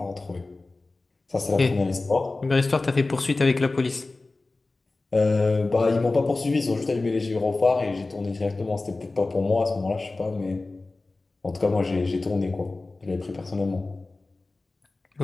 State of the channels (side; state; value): right; quieter; 3.3 dB